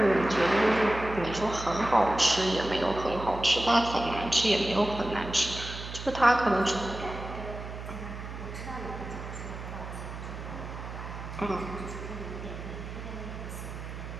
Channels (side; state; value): right; noise; hum, 9 dB below the sound